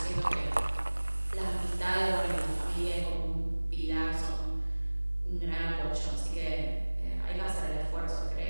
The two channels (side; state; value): both; inverted; correlation -1.00